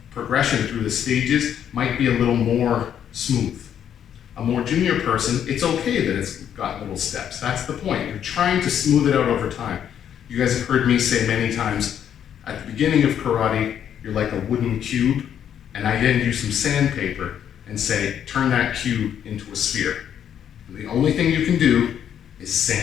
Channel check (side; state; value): right; quieter; 9.3 dB